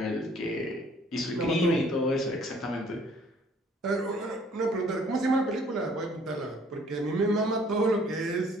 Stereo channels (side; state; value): both; normal; correlation 0.58